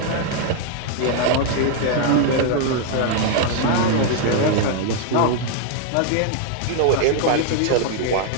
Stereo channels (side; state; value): both; different; correlation 0.00